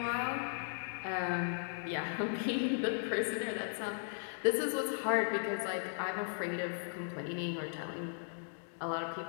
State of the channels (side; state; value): right; silent; digital silence